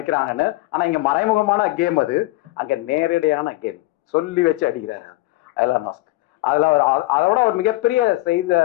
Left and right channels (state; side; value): quieter; right; 19.5 dB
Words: ஆனா இங்க மறைமுகமான கேம், அது அங்க நேரடியான கேம். சொல்லி வச்சு அடிக்கிறாரு எலான் மஸ்க். அதுல அதோட ஒரு மிகப்பெரிய செய்த